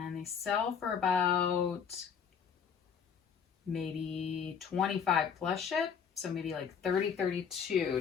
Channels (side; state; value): right; quieter; 7.0 dB